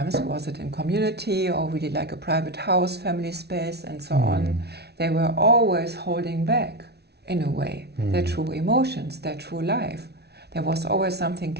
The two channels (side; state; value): left; late; 0.48 ms